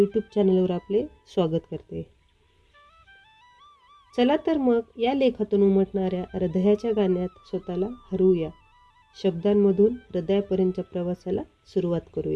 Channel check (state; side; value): identical; both; correlation 1.00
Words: चॅनलवर आपले स्वागत करते. चला तर मग या लेखातून उमटणाऱ्या हृदयाच्या गाण्यात स्वतःला हरवूया. शब्दांमधून हृदयापर्यंतच्या प्रवासाला सुरुवात